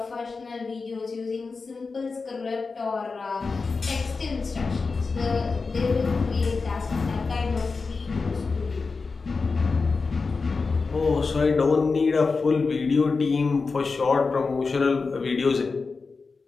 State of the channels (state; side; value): quieter; right; 4.4 dB